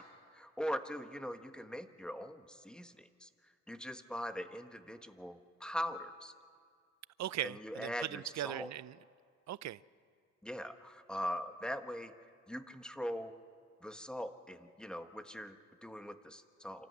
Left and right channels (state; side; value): normal; both; correlation 0.69